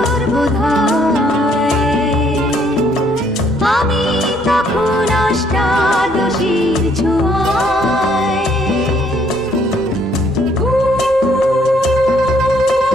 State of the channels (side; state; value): both; normal; correlation 0.66